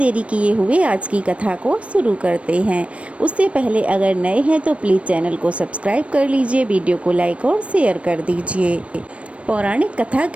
किए हुए आज की कथा को शुरू करते हैं। उससे पहले अगर नए हैं तो प्लीज़ चैनल को सब्सक्राइब कर लीजिए, वीडियो को लाइक और शेयर कर दीजिए। पौराणिक कथा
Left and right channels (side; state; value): left; late; 0.062 ms